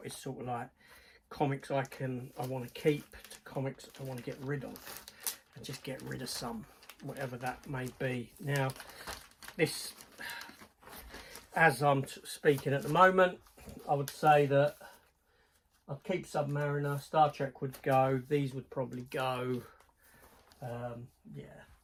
is sort of like comics I want to keep to comics I want to get rid of, and just get rid of some, whatever that may be. Now, this, as I'm speaking at the moment, I would say that I'd keep Submariner, Star Trek would go, these would probably go, yeah.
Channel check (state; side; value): identical; both; correlation 1.00